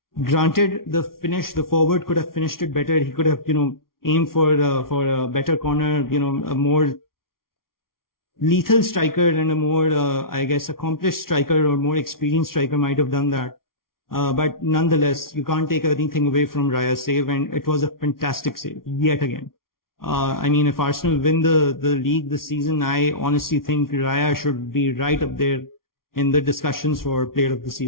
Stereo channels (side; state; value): right; late; 0.93 ms